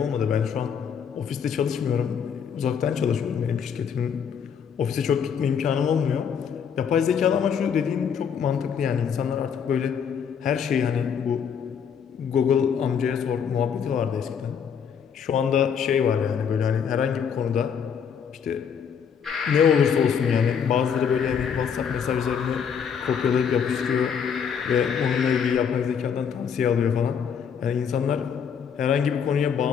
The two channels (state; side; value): quieter; right; 7.3 dB